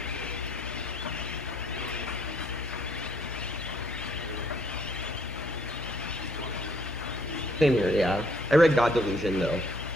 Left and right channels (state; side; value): normal; both; correlation 0.65